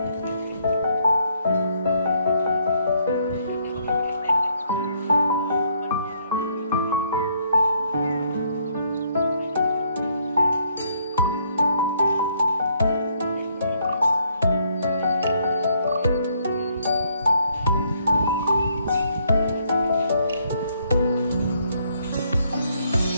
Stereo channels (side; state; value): both; inverted; correlation -0.70